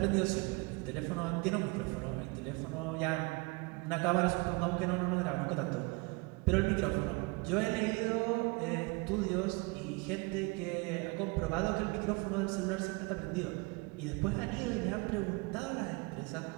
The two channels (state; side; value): quieter; left; 27.7 dB